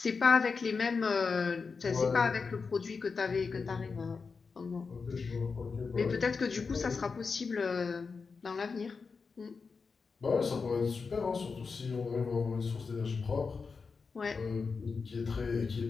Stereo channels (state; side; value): quieter; right; 4.9 dB